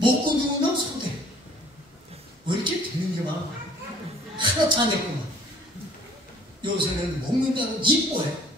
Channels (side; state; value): both; normal; correlation 0.55